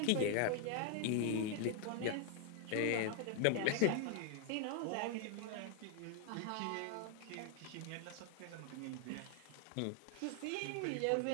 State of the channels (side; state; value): both; different; correlation 0.00